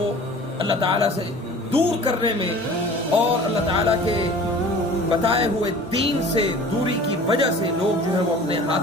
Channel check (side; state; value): right; noise; hum, 26 dB below the sound